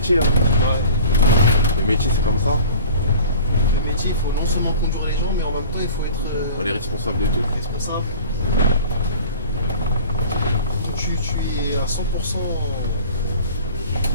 Hein. Ouais. Le métier c'est comme ça. Le métier, il faut non seulement conduire les gens, mais en même temps, il faut être On est responsable de tout. responsable. Tu es à 100% dans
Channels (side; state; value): both; inverted; correlation -0.42